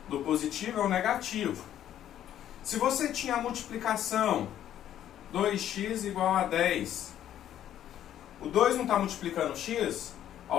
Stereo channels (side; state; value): right; quieter; 11.2 dB